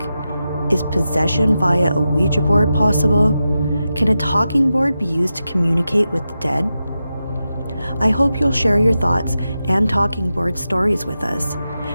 Is possession via a Ouija board possible? Can a talking board be used to communicate with the dead? I hope you'll share your thoughts and talking board stories with us.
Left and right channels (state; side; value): inverted; both; correlation -0.90